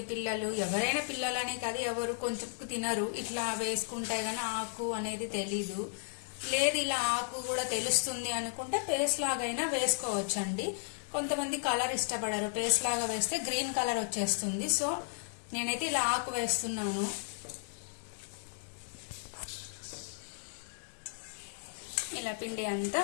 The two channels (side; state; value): right; silent; digital silence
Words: పిల్లలు, ఎవరైనా పిల్లలనే కాదు, ఎవరు కొంచెం తినరు. ఇట్లా వేసుకుంటే గానీ ఆకు అనేది తెలీదు. లేదు ఇలా ఆకు కూడా తెలుస్తుంది అనుకుంటే పేస్ట్ లాగైనా వేసుకోవచ్చు అండి. కొంతమంది కలర్ ఇష్టపడరు, పేస్ట్ లాగా వేస్తే గ్రీన్ కలర్ వచ్చేస్తుంది. సో నేనైతే ఇలా ఆకు వేస్తున్నాను. ఇలా పిండి